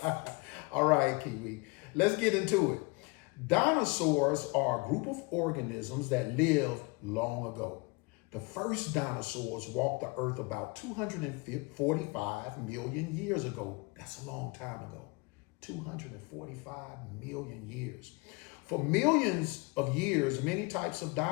All right, Kiwi, let's get into it. Dinosaurs are a group of organisms that lived long ago. The first dinosaurs walked the earth about 245 million years ago. That's a long time ago. 245 million years. For millions of years, many types of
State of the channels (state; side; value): quieter; right; 27.7 dB